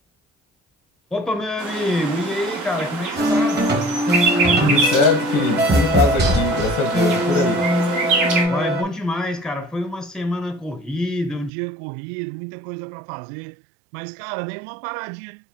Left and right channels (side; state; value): left; drops out; at 11.5 s